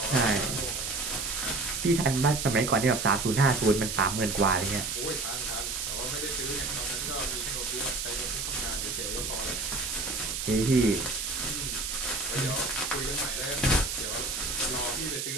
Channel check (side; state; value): right; noise; hiss, 3 dB below the sound